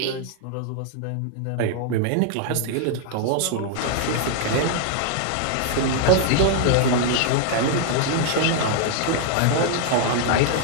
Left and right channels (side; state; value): both; different; correlation 0.00